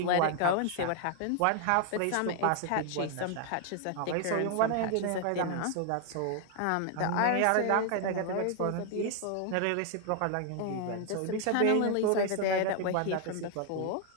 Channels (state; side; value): different; both; correlation 0.00